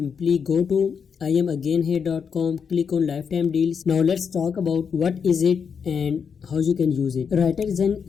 go to IamAgainHere.com, click on lifetime deals. Now let's talk about what is it and how you can use it. WriterZen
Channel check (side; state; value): right; quieter; 6.5 dB